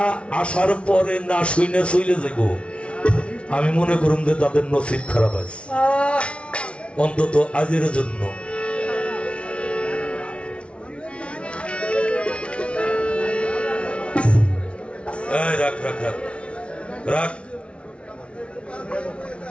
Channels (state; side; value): late; right; 0.060 ms